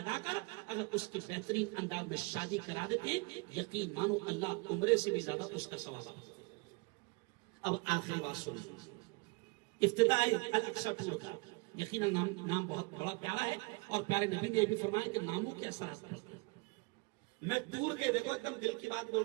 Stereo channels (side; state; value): left; quieter; 28.6 dB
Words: کر اگر اس کی بہترین انداز میں شادی کرا دیتے ہیں, یقین مانو اللہ عمرے سے بھی زیادہ اس کا ثواب آتا ہے. اب آخری بات سنیے, افتتاح الاقصی ٹور کا یقیناً نام بہت بڑا پیارا ہے, اور پیارے نبی نے یہ بھی فرمایا کہ ناموں کے اثرات پڑتے ہیں. میں ٹور کے, دیکھو ایک دم دل کی بات بول